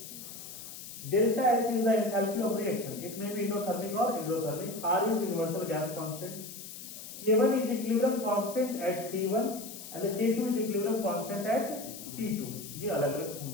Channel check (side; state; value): left; noise; hiss, 12 dB below the sound